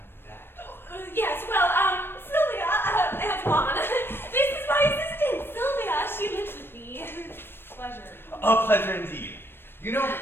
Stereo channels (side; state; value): right; late; 0.10 ms